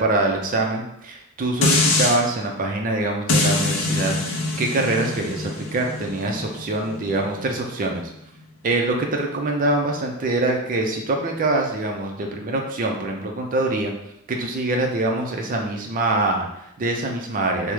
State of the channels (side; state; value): both; normal; correlation 0.18